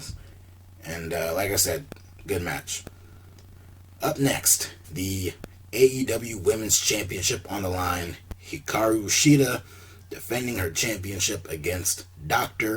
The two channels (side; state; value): both; identical; correlation 1.00